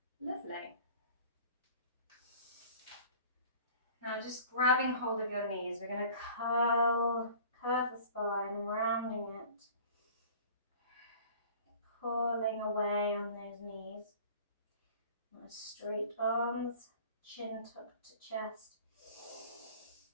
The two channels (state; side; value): inverted; both; correlation -0.46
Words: Lovely. Now just grabbing hold of your knees, we're going to curve the spine, rounding it. Pulling away on those knees. Nice straight arms, chin tucked to chest.